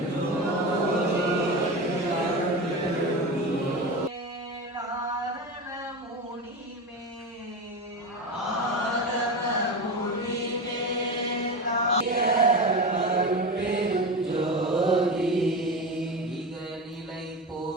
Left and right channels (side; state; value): both; normal; correlation 0.24